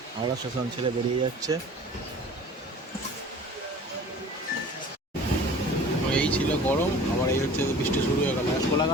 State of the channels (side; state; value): both; normal; correlation 0.44